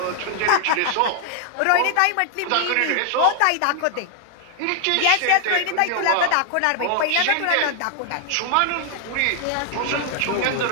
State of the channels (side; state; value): both; different; correlation 0.00